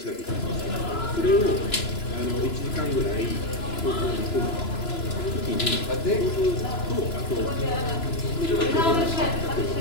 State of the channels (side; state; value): right; late; 2.9 ms